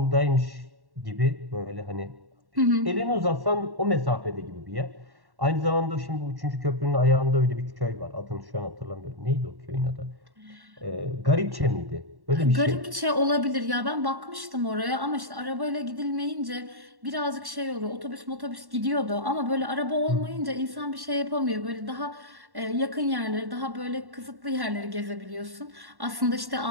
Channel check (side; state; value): left; late; 1.1 ms